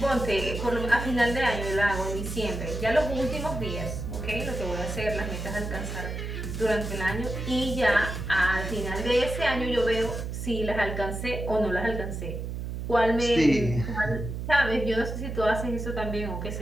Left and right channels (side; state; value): right; noise; hum, 5 dB below the sound